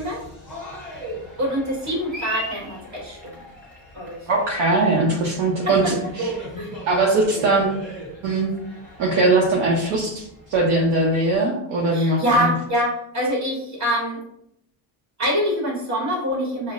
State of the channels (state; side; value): normal; both; correlation 0.08